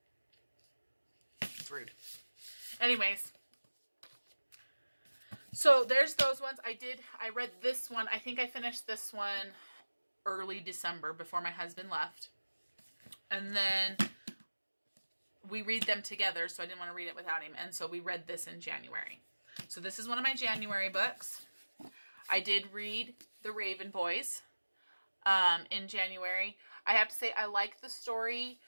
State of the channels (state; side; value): inverted; both; correlation -1.00